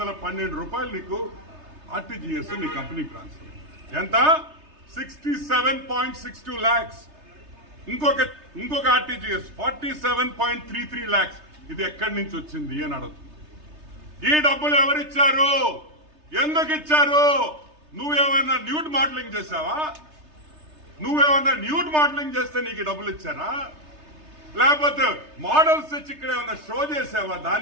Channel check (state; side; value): late; left; 3.3 ms